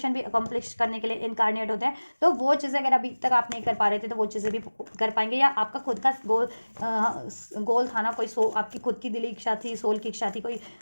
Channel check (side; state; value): both; inverted; correlation -1.00